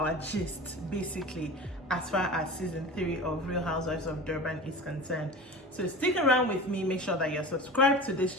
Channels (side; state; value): both; normal; correlation 0.34